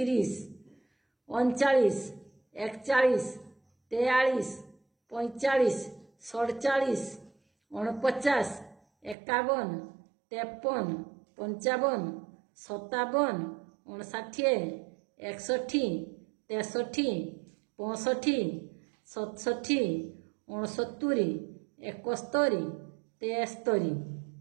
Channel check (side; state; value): left; drops out; at 9.2 s